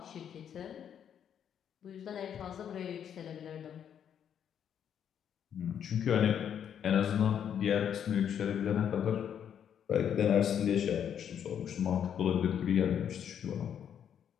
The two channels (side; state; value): right; quieter; 8.8 dB